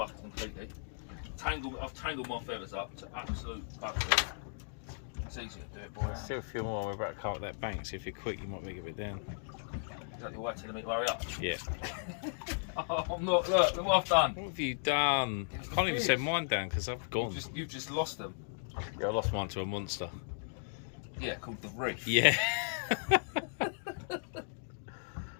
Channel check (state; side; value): silent; right; digital silence